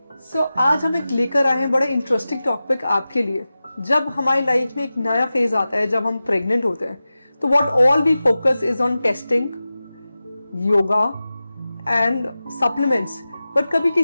So आज हम एक लेकर आए हैं बड़ा interesting topic आपके लिए। जब हमारी लाइफ में एक नया फेज आता है, जब हम प्रेग्नेंट होते हैं, तो what all we focus is on testing, yoga and supplements. But कभी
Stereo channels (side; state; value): both; inverted; correlation -0.95